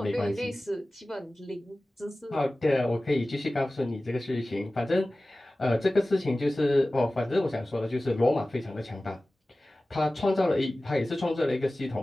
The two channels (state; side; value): normal; both; correlation 0.97